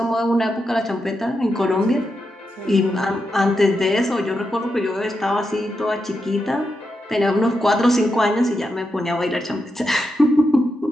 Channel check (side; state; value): both; normal; correlation 0.86